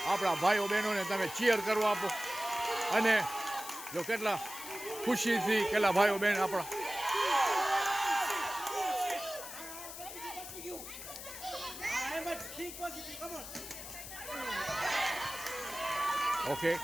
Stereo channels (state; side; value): noise; left; hiss, 10 dB below the sound